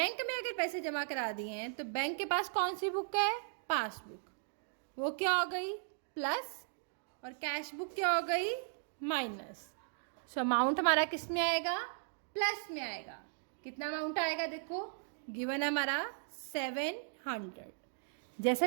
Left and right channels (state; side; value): silent; left; digital silence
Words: में अगर पैसे जमा करा दिए हैं तो बैंक के पास कौन सी बुक है? पासबुक। वो क्या हो गई? प्लस, और कैश बुक क्या हो गई? माइनस। सो अमाउंट हमारा किस में आएगा? प्लस में आएगा। कितना अमाउंट आएगा? देखो गिवन है हमारा 700। जैसे